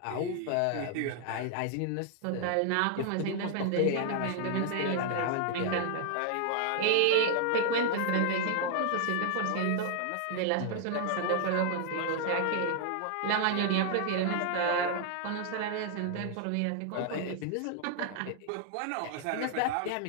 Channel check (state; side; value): different; both; correlation 0.00